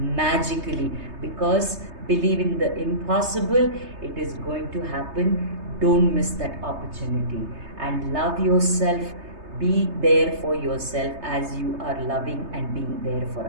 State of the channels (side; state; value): left; late; 3.3 ms